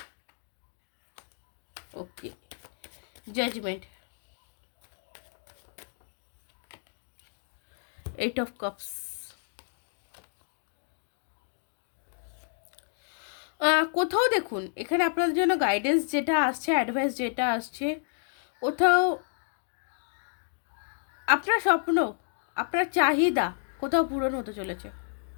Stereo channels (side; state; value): right; silent; digital silence